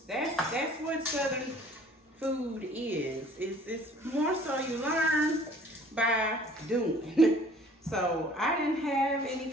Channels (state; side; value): normal; both; correlation 0.53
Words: That's what Southern food is. It's more so you learn by doing. So I didn't have any